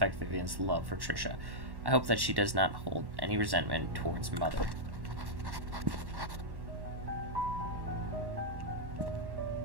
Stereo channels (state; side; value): late; left; 1.1 ms